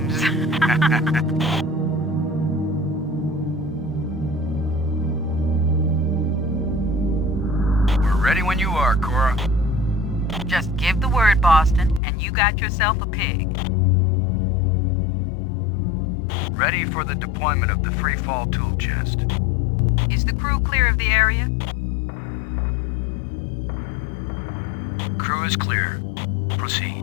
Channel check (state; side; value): drops out; right; at 12.0 s